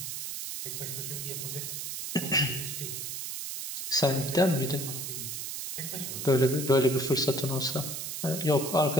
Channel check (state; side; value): noise; right; hiss, 5 dB below the sound